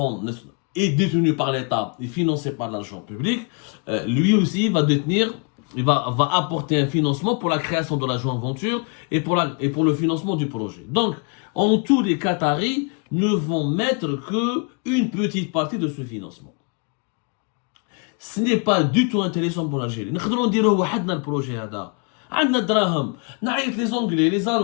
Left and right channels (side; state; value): right; quieter; 35.8 dB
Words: est détenu par l'État et financé par l'argent public, lui aussi va apporter un financement pour la création de la joint venture et pour le financement du projet. Donc, en tout, les Qataris ne vont mettre que une petite partie de ce financement. Ce n'est pas du tout intéressant pour l'Algérie. Nous devons dire le projet là. عندنا دراهم نعيط les Anglais, les